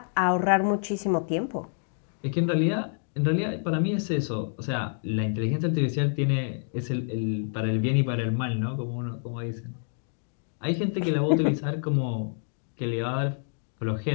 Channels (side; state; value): right; silent; digital silence